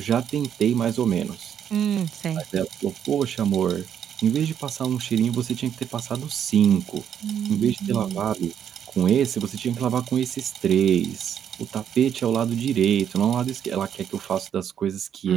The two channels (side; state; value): left; quieter; 9.0 dB